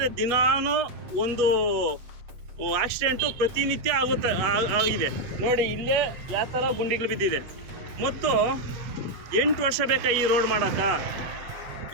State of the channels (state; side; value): late; left; 7.9 ms